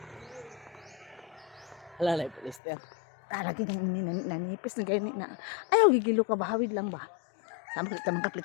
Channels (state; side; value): drops out; right; at 2.6 s